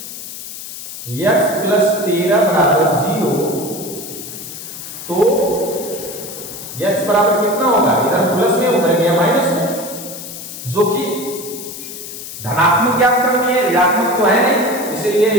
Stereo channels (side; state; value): left; noise; hiss, 11 dB below the sound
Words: x + 13 बराबर 0 तो x बराबर कितना होगा, इधर प्लस में उधर गया माइनस में, जो कि धनात्मक ज्ञात करनी है, ऋणात्मक तो है नहीं, इसलिए